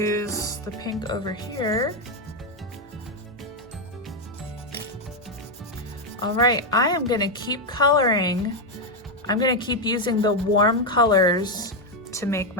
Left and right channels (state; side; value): normal; both; correlation 0.03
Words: the pink over here. All right, I am gonna keep coloring. I'm gonna keep using the warm colors to make